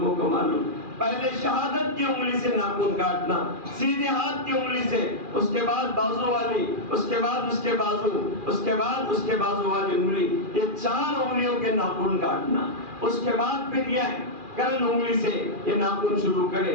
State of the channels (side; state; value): left; late; 2.4 ms